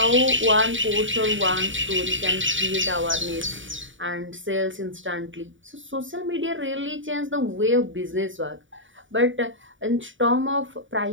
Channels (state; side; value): late; left; 0.56 ms